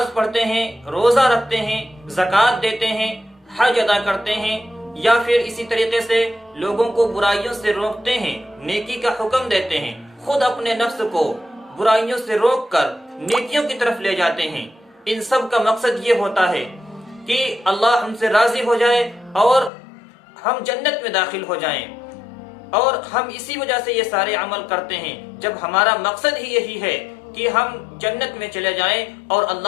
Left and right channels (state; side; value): drops out; right; at 19.7 s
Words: پڑھتے ہیں، روزہ رکھتے ہیں، زکوٰۃ دیتے ہیں، حج ادا کرتے ہیں، یا پھر اسی طریقے سے لوگوں کو برائیوں سے روکتے ہیں، نیکی کا حکم دیتے ہیں، خود اپنے نفس کو برائیوں سے روک کر نیکیوں کی طرف لے جاتے ہیں۔ ان سب کا مقصد یہ ہوتا ہے کہ اللہ ہم سے راضی ہو جائے اور ہم جنت میں داخل ہو جائیں، اور ہم اسی وجہ سے یہ سارے عمل کرتے ہیں۔ جب ہمارا مقصد ہی یہی ہے کہ ہم جنت میں چلے جائیں اور